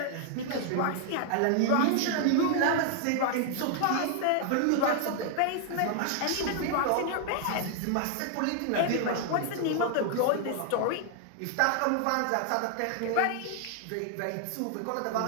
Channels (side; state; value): both; different; correlation 0.00